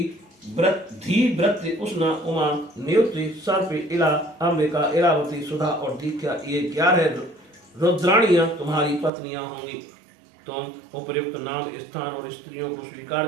व्रत, उष्णा, उमा, नियुक्ति, सर्प, इला, अंबिका, इरावती, सुधा और दीक्षा, ये 11 रुद्राणियां तुम्हारी पत्नियां होंगी। तुम उपयुक्त नाम, स्थान और स्त्रियों को स्वीकार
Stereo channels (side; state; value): left; drops out; at 9.1 s